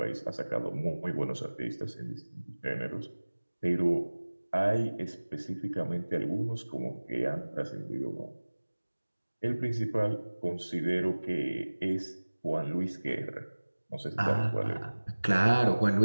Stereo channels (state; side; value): inverted; both; correlation -1.00